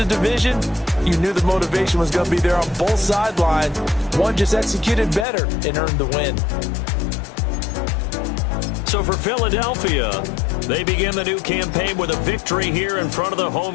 division. You knew the motivation was going to be there on both sidelines. One just executed better and earned the win. So for Philadelphia, they begin the new campaign with a victory here in front of the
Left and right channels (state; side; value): drops out; right; at 5.2 s